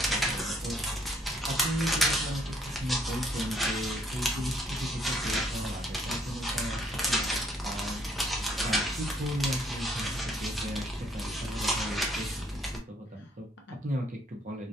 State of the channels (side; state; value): both; normal; correlation 0.66